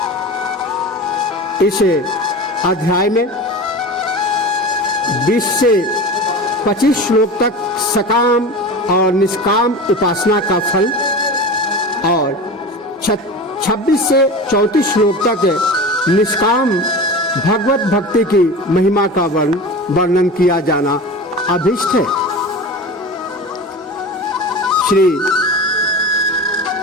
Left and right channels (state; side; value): normal; both; correlation 0.31